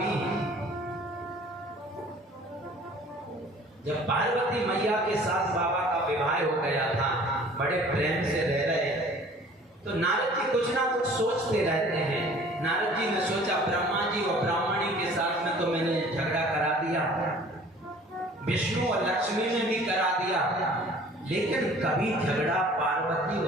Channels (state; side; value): normal; both; correlation 0.50